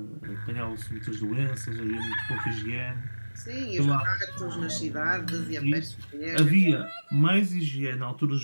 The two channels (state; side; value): inverted; both; correlation -1.00